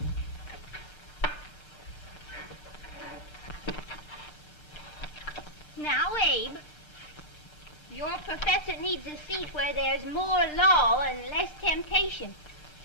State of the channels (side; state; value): right; late; 1.3 ms